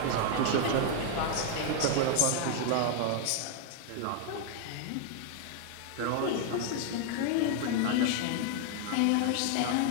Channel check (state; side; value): different; both; correlation 0.00